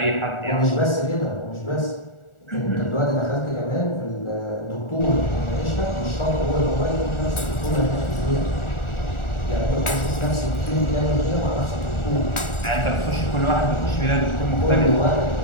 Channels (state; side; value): late; right; 1.4 ms